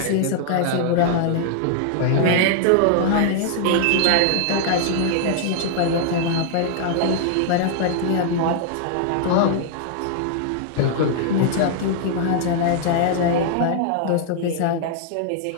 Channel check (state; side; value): different; both; correlation -0.01